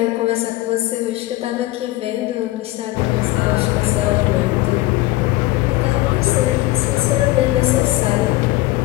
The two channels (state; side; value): quieter; right; 18.3 dB